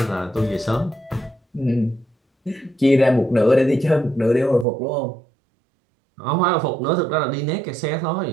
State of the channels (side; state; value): left; drops out; at 4.7 s